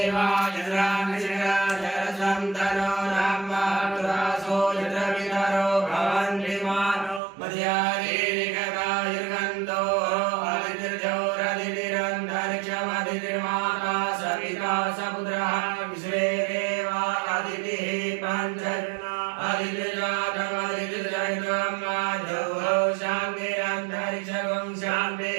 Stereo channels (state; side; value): drops out; left; at 7.2 s